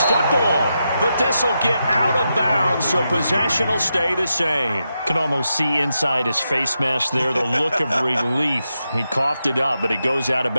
football. But this will get out of bounds, so possession will stay the same. Can almost see inside his face mask there the look of relief. He coughed it up, but it goes out of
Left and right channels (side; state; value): both; inverted; correlation -0.86